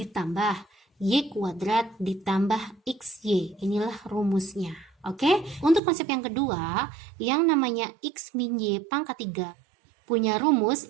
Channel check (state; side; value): drops out; left; at 5.8 s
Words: Y kuadrat ditambah XY. Inilah rumusnya. Oke? Untuk konsep yang kedua, yang namanya X min Y pangkat 3 punya